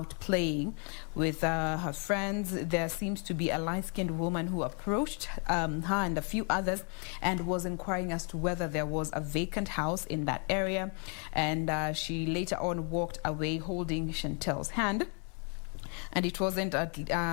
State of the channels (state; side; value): quieter; right; 39.7 dB